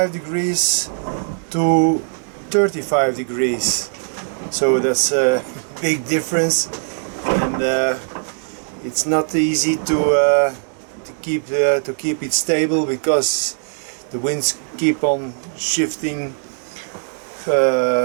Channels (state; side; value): silent; left; digital silence